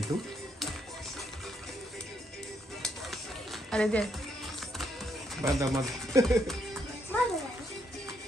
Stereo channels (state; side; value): normal; both; correlation 0.75